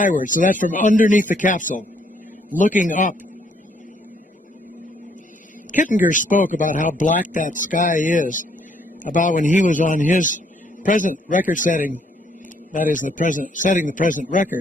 so that's from underneath the capsule, looking up. Kittinger spoke about how black that sky is, about when he was on his present record setting, that is setting the present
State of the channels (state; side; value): normal; both; correlation 0.68